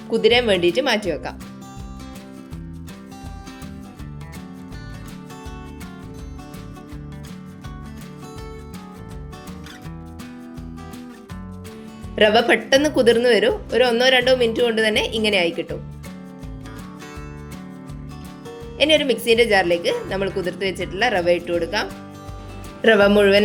കുതിരാൻ വേണ്ടിയിട്ട് മാറ്റി വെക്കാം. റവ പെട്ടെന്ന് കുതിർന്നു വരും. ഒരു 1-2 മിനിറ്റ് കൊണ്ട് തന്നെ ഇങ്ങനെ ആയി കിട്ടും. ഇനി ഒരു മിക്സിയുടെ ജാറിലേക്ക് നമ്മൾ കുതിർത്ത് വെച്ചിട്ടുള്ള റവ ഇട്ട് കൊടുക്കാം. റവ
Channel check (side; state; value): both; identical; correlation 1.00